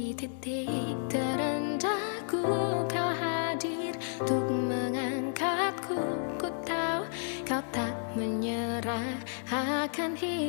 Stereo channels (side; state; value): right; silent; digital silence